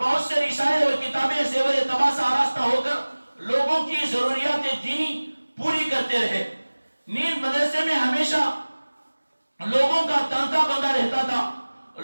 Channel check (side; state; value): both; inverted; correlation -1.00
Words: بہت سے رسائل اور کتابیں زیور طبع سے آراستہ ہو کر لوگوں کی ضروریات دینی پوری کرتے رہے. نیز مدرسے میں ہمیشہ لوگوں کا تانتا بندہ رہتا تھا.